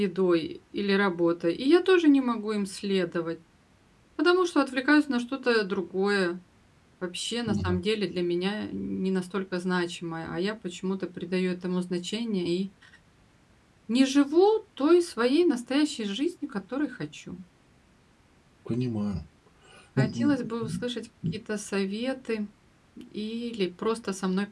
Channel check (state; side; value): identical; both; correlation 1.00